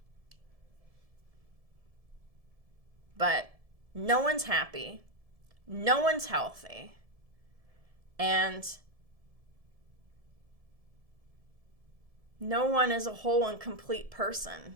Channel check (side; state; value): left; late; 1.7 ms